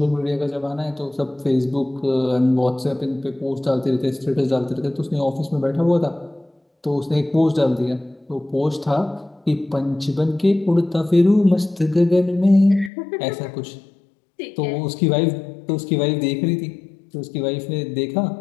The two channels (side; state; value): right; drops out; at 12.9 s